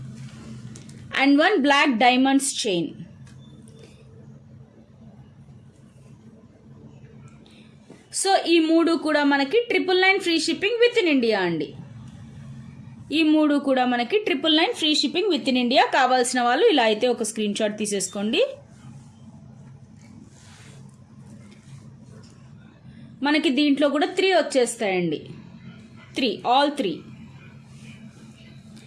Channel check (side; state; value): both; identical; correlation 1.00